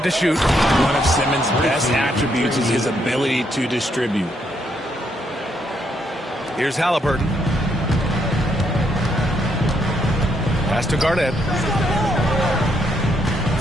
to shoot. One of Simmons' best attributes is his ability to distribute. Here's Halliburton. Pass to Garnett.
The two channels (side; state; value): both; normal; correlation 0.75